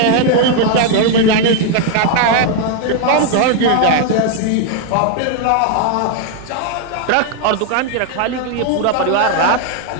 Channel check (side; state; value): both; different; correlation 0.00